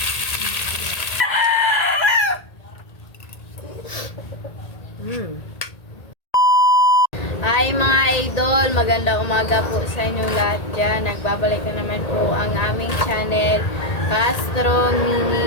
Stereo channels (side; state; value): right; late; 1.8 ms